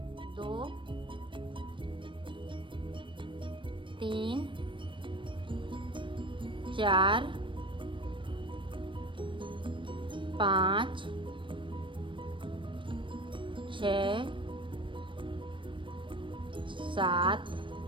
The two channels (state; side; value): late; left; 0.24 ms